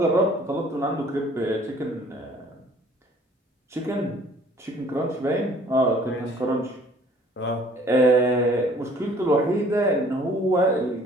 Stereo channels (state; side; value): normal; both; correlation 0.55